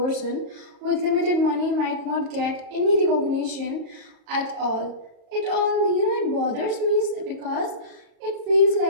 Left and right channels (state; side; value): late; left; 37 ms